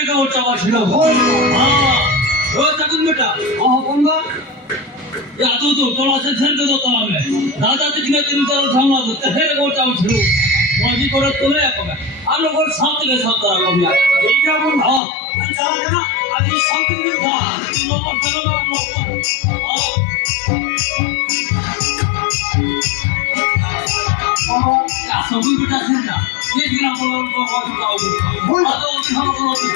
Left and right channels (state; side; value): drops out; right; at 15.0 s